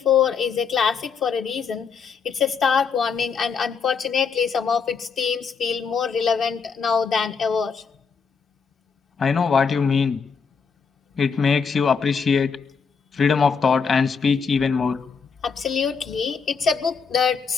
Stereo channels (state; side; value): quieter; right; 5.7 dB